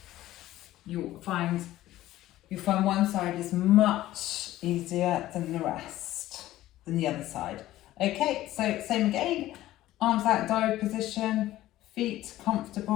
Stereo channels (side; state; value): right; quieter; 15.0 dB